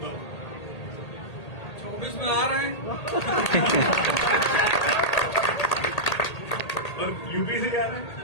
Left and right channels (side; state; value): right; late; 1.8 ms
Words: बाबू 24 में आ रहे हैं। और यूपी से जा रहे हैं।